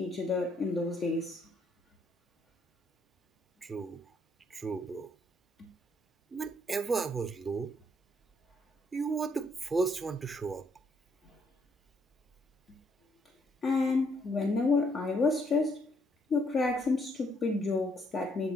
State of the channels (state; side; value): normal; both; correlation 0.71